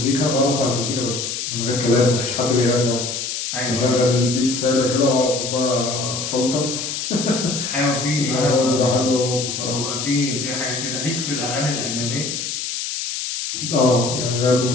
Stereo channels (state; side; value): noise; left; hiss, 4 dB below the sound